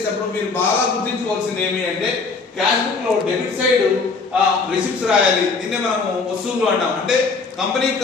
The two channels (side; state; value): right; quieter; 4.4 dB